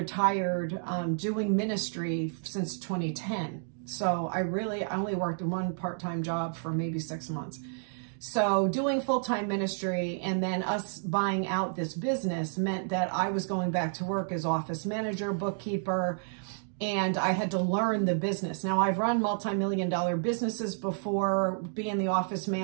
doing ministry since 2010. So I only worked one part-time job for maybe 6 months. So doing full-time ministry and then us buying out this business meant that I was going back to work as office manager, bookkeeper, and I had to learn the business. Now, I've run multi-million-dollar businesses before, being the office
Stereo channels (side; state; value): left; silent; digital silence